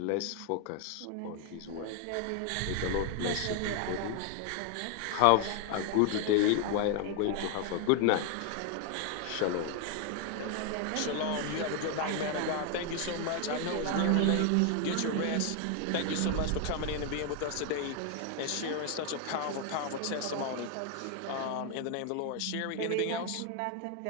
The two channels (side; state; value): both; different; correlation 0.01